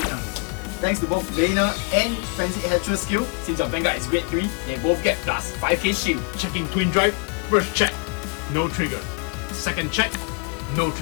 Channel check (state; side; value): quieter; right; 33.1 dB